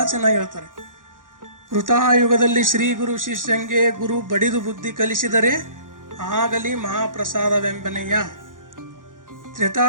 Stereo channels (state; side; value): late; left; 0.89 ms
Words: ಚೆನ್ನಾಗಿ ಹೇಳ್ತಾರೆ. ಕೃತಾಯುಗದಲ್ಲಿ ಶ್ರೀ ಗುರು ಶಿಷ್ಯಂಗೆ ಗುರು ಬಡಿದು ಬುದ್ಧಿ ಕಲಿಸಿದರೆ ಆಗಲಿ ಮಹಾಪ್ರಸಾದವೆಂಬನೆಯ.